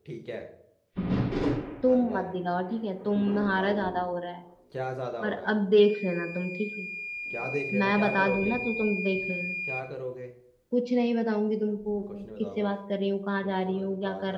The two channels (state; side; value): identical; both; correlation 1.00